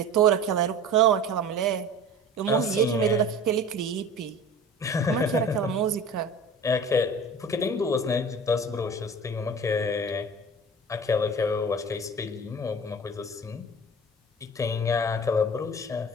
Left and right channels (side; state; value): both; normal; correlation 0.38